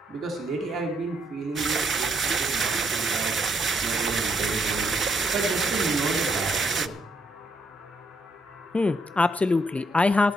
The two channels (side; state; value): both; normal; correlation 0.74